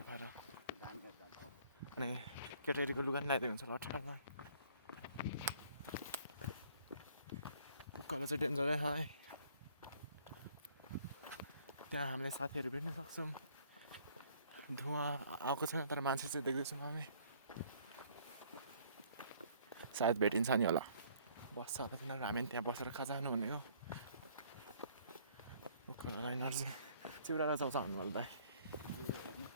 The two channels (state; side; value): inverted; both; correlation -0.59